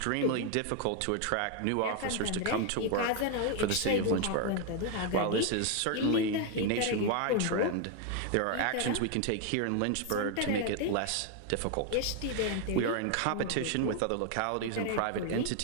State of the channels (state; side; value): different; both; correlation 0.01